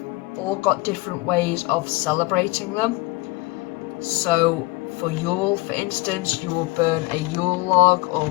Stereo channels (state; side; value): quieter; right; 23.1 dB